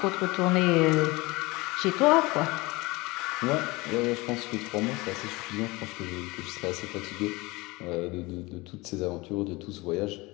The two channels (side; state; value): right; quieter; 23.1 dB